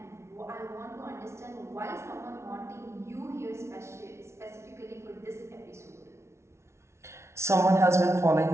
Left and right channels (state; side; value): late; left; 0.13 ms